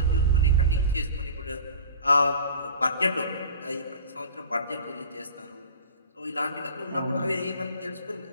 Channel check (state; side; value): inverted; both; correlation -0.42